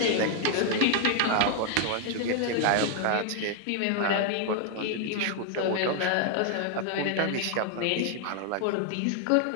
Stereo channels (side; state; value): both; different; correlation 0.00